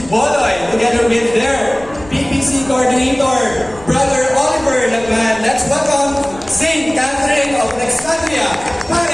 together with their PPC coordinator, Brother Oliver Lagman. Let's welcome Saint Catherine of Alexandria,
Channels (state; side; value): noise; left; rumble, 20 dB below the sound